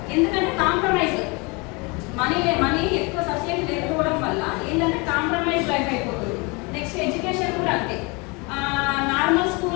ఎందుకంటే కాంప్రమైజ్, మనీ ఎక్కువ సబ్సిడీ లేకపోవడం వల్ల ఏంటంటే కాంప్రమైజ్ లైఫ్ అయిపోతుంది. నెక్స్ట్ ఎడ్యుకేషన్ కూడా అంతే, నార్మల్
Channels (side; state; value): right; quieter; 28.2 dB